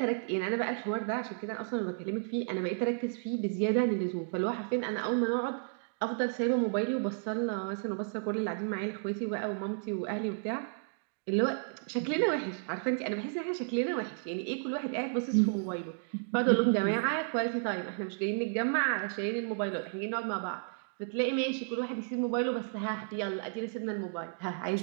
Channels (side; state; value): left; silent; digital silence